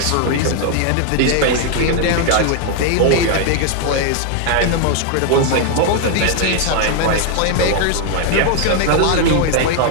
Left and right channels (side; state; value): both; different; correlation 0.00